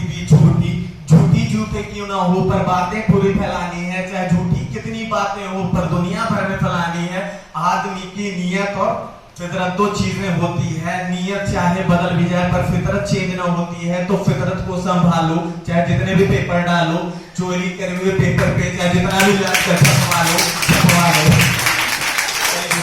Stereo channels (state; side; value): identical; both; correlation 1.00